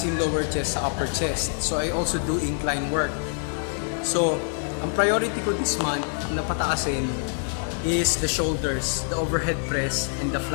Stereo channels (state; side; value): silent; right; 61 dB below the other